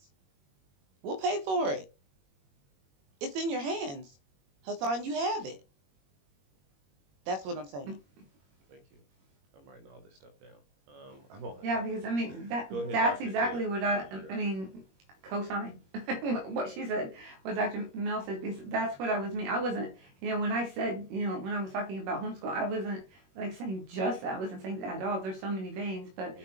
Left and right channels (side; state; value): left; late; 21 ms